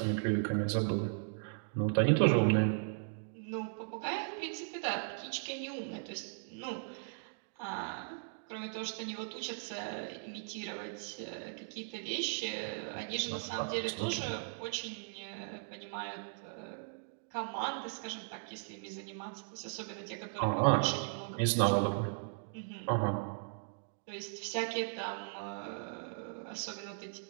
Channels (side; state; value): left; silent; digital silence